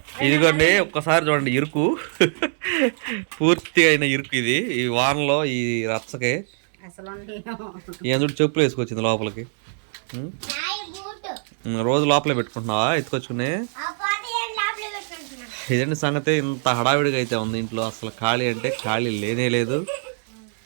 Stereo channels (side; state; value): left; silent; digital silence